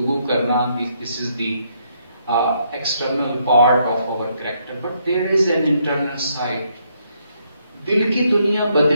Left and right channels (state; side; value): inverted; both; correlation -0.74